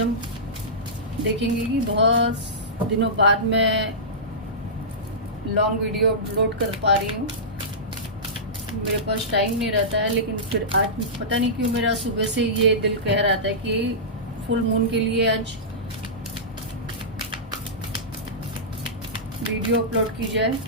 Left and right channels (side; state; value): both; normal; correlation -0.17